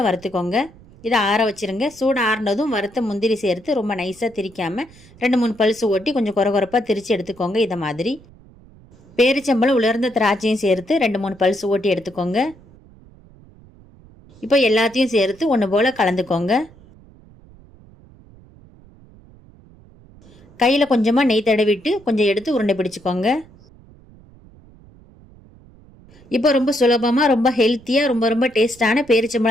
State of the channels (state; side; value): noise; right; rumble, 25 dB below the sound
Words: வறுத்துக்கோங்க. இதை ஆற வச்சுருங்க. சூடு ஆறினதும் வறுத்த முந்திரி சேர்த்து ரொம்ப நைஸாக திரிக்காமல் 2-3 பல்ஸ் ஓட்டி கொஞ்சம் குறப்பாக திரித்து எடுத்துக்கோங்க. இதை மாதிரி பேரிச்சம்பழம் உலர்ந்த திராட்சையும் சேர்த்து 2-3 பல்ஸ் ஓட்டி எடுத்துக்கோங்க. இப்போ எல்லாத்தையும் சேர்த்து ஒன்று போல் கலந்துக்கோங்க. கையில் கொஞ்சமாக நெய் தடவிட்டு கொஞ்சம் எடுத்து உருண்டை பிடிச்சிக்கோங்க. இப்போ ரொம்ப சுலபமாக ரொம்ப ஹெல்த்தியாக ரொம்ப ரொம்ப டேஸ்டான